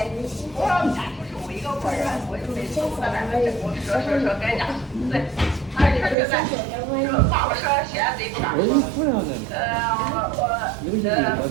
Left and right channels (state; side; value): drops out; left; at 6.2 s